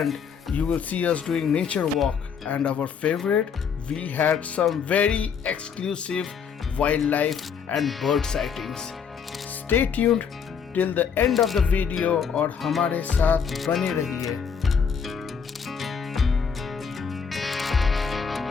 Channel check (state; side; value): quieter; right; 6.6 dB